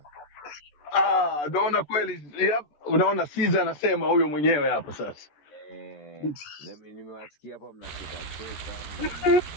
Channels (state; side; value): late; right; 14 ms